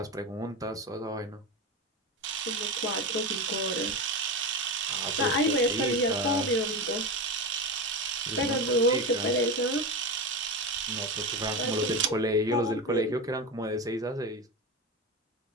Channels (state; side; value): normal; both; correlation 0.20